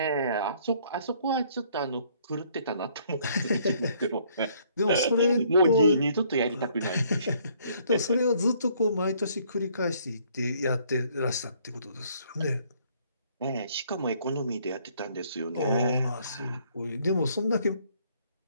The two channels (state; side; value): inverted; both; correlation -0.64